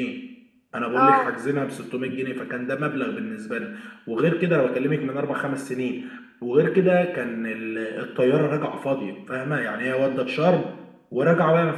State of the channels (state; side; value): identical; both; correlation 1.00